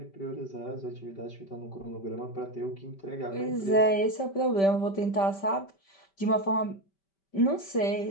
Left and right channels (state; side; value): late; right; 5.2 ms